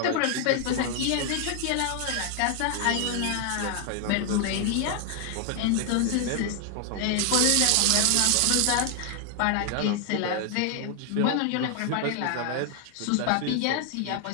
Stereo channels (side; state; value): both; different; correlation 0.00